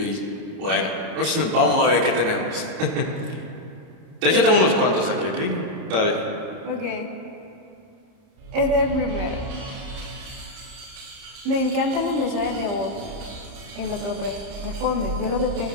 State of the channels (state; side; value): late; left; 30 ms